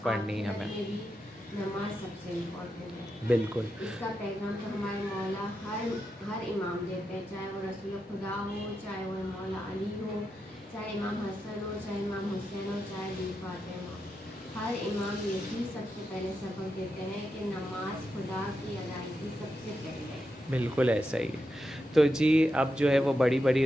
پڑھنی ہے ہمیں. نماز سب سے امپورٹنٹ ہے. بالکل. اس کا پیغام تو ہمارے مولا ہر امام دیتے ہیں, چاہے وہ رسول خدا ہو, چاہے وہ مولا علی ہو, چاہے امام حسن ہو, چاہے امام حسین ہو, چاہے بی فاطمہ. ہر امام یہی سب سے پہلے سبق دیتے ہیں کہ نماز خدا کی ادائیگی سب سے پہلے. بالکل ایسا ہی ہے. تو جی اب جو ہے وہ بڑی بڑی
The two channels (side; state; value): both; normal; correlation 0.87